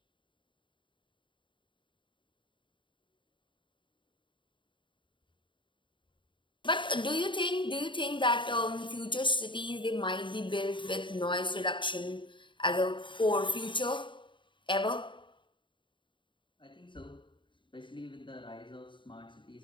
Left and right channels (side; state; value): right; late; 0.23 ms